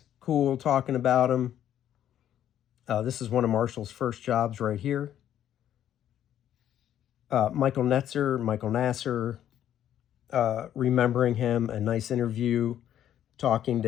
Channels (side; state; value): right; quieter; 10.9 dB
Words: cool, talking about him. This is one of Marshall's first jobs right here. Michael Nasser, remembering him, a nice interview, talking